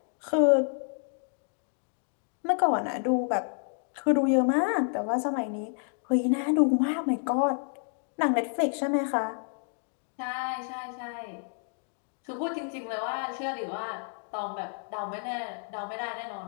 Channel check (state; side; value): silent; right; 58 dB below the other